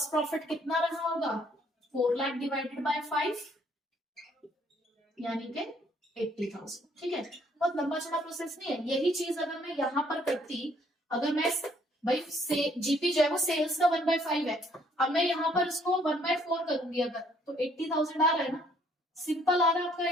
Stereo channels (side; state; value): both; normal; correlation 0.65